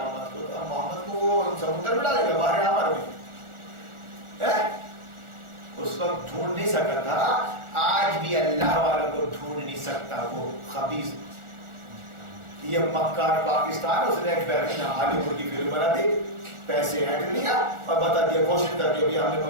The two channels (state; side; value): late; left; 1.4 ms